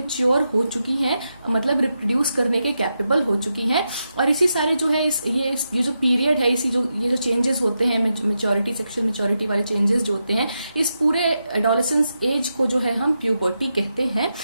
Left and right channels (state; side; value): inverted; both; correlation -0.87